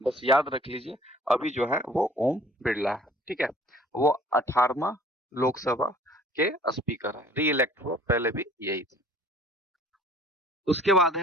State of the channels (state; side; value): normal; both; correlation 0.52